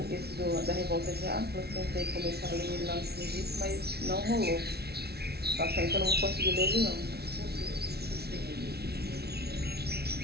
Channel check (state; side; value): late; left; 0.46 ms